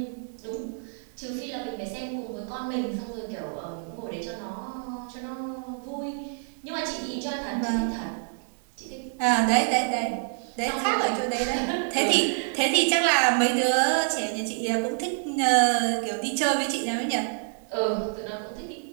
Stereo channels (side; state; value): left; silent; 60 dB below the other